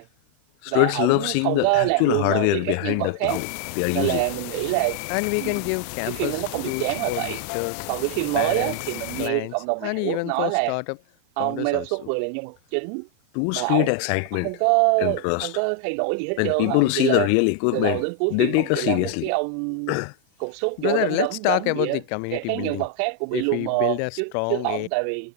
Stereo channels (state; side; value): different; both; correlation 0.00